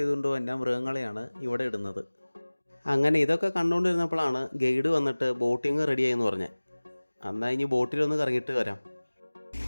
വന്ന മൃഗങ്ങളെയാണ് ഇവിടെ ഇടുന്നത്. അങ്ങനെ ഇതൊക്കെ കണ്ടുകൊണ്ടിരുന്നപ്പോഴാണ് ഗൈഡ് വന്നിട്ട് ബോട്ടിങ് റെഡിയായെന്ന് പറഞ്ഞത്. എന്നാൽ ഇനി ബോട്ടിലൊന്ന് കറങ്ങിയിട്ട് വരാം.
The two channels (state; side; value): inverted; both; correlation -1.00